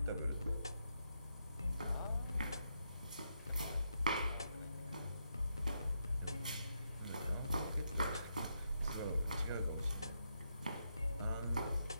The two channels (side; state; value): both; inverted; correlation -0.81